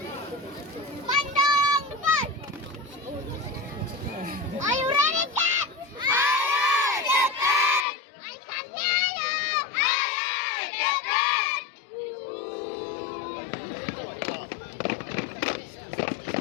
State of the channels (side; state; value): right; drops out; at 7.9 s